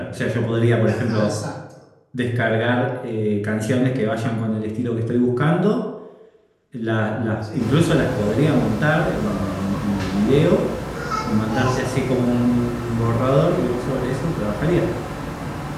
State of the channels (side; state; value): both; identical; correlation 1.00